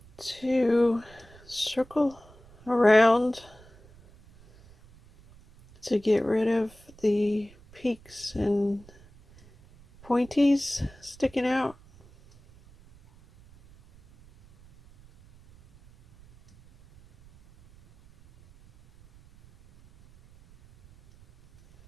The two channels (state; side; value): noise; right; rumble, 25 dB below the sound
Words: to circle around to get rid of the peaks and pointies sticking out.